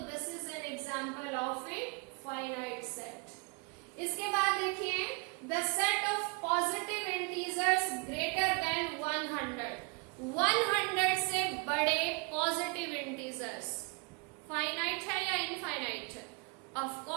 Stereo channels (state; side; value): quieter; left; 32.8 dB